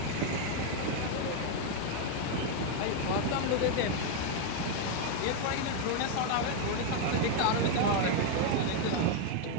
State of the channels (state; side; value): different; both; correlation 0.01